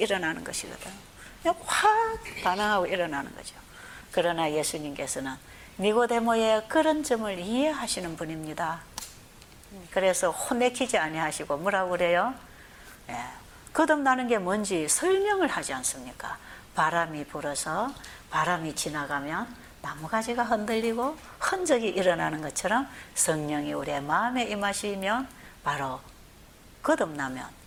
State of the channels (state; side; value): identical; both; correlation 1.00